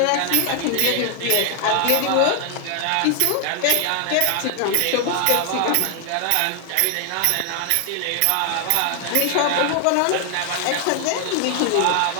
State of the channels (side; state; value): both; different; correlation 0.00